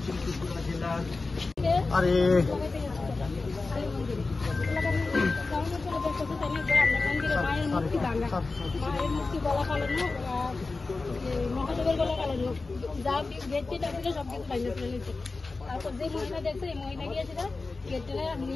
ত্রিপুরা জেলার আরে মায়ের মুক্তি গলা কালানো মহাদেবের গলা কালানো যা গেটটি ছিল সব কিছু বাইরে ফেলে নিচ্ছে। তারপর যে মহিলা দেখছে এই মহিলা গিয়েছিল গেটটা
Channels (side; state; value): right; quieter; 3.7 dB